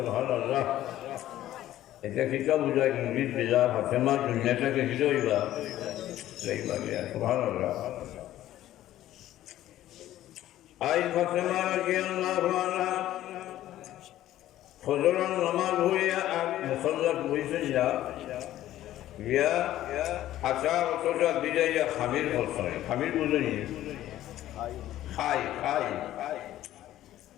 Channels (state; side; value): quieter; right; 13.6 dB